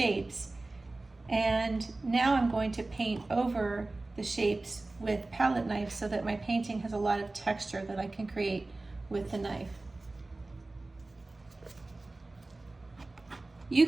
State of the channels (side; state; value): left; quieter; 3.1 dB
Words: And now I'm going to paint over the shapes with palette knives so that my painting has a lot of texture that I can create with the knife. You